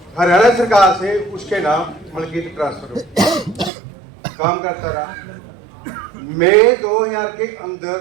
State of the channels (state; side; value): drops out; left; at 3.7 s